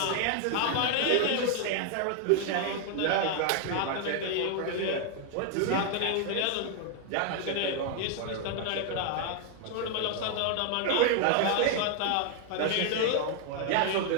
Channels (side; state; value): both; different; correlation 0.00